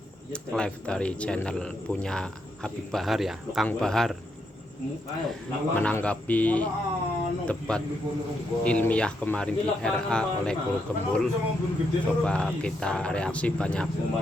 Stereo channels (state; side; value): normal; both; correlation 0.80